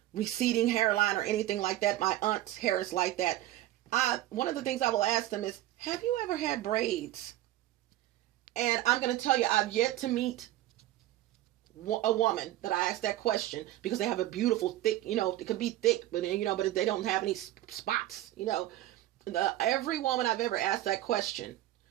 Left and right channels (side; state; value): left; quieter; 14.7 dB